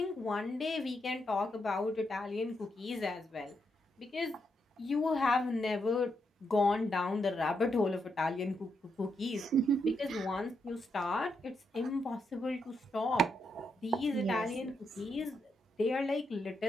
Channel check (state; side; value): normal; both; correlation 0.81